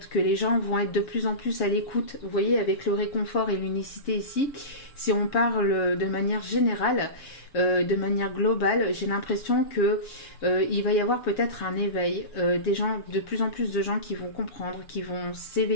que les gens vont être de plus en plus à l'écoute. Vous voyez, avec le réconfort et l'unicité ici, si on parle de manière générale, de manière globale, j'ai l'impression que il va y avoir peut-être un éveil, des gens, de plus en plus de gens qui vont comprendre, qui vont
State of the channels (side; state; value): right; late; 7.3 ms